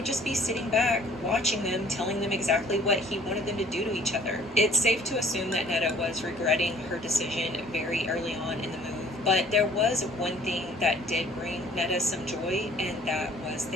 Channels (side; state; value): both; normal; correlation 0.56